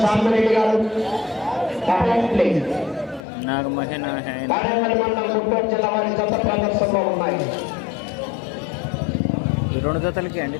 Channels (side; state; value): right; drops out; at 3.2 s